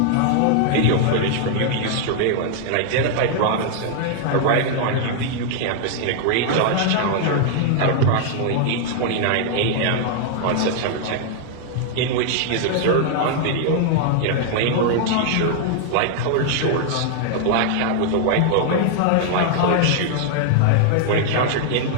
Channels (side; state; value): both; different; correlation 0.00